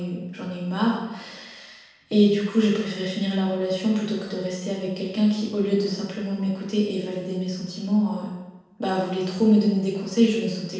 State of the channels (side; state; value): both; identical; correlation 1.00